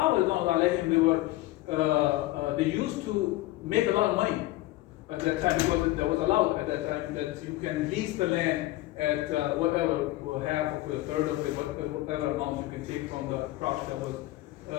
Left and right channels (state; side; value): quieter; right; 17.4 dB